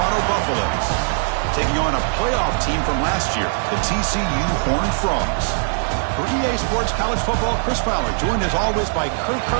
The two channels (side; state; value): left; silent; digital silence